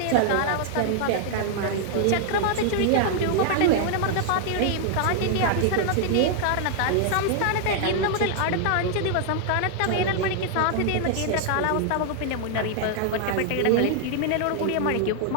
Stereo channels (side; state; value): both; different; correlation 0.00